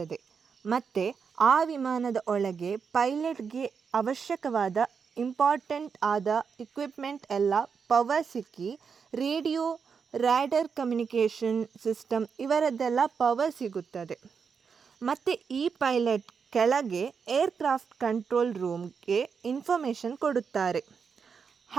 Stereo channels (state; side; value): quieter; left; 6.1 dB